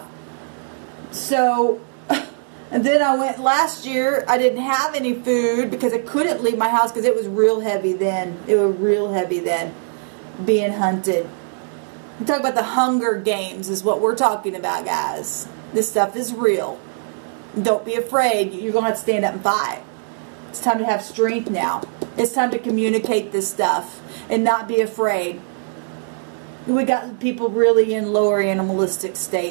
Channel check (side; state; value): left; silent; digital silence